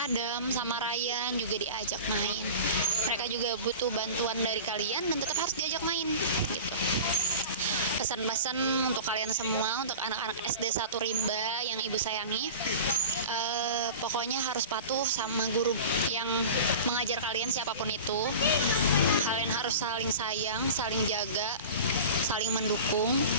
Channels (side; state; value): both; inverted; correlation -0.35